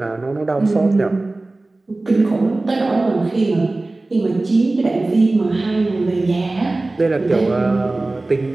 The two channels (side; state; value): left; quieter; 3.0 dB